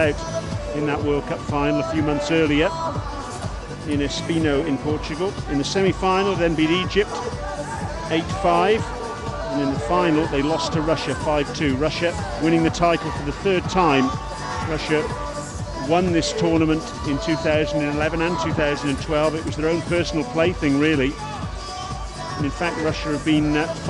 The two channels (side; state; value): both; identical; correlation 1.00